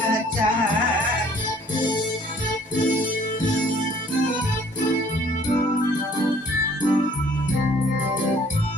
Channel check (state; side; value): normal; both; correlation 0.57